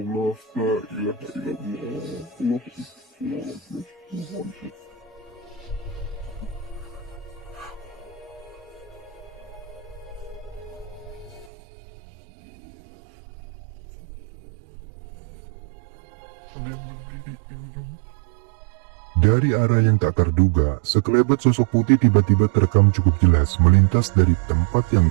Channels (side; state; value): left; drops out; at 11.5 s